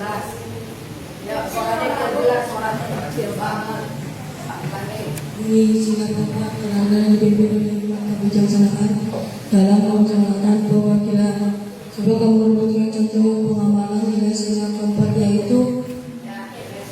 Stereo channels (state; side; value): identical; both; correlation 1.00